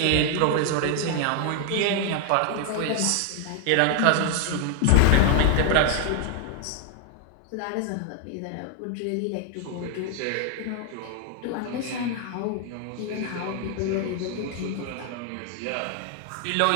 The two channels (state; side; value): different; both; correlation 0.00